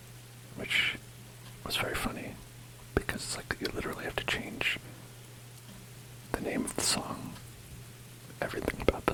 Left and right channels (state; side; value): identical; both; correlation 1.00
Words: which was very funny because it's like you literally have to change the name of the song, everything about the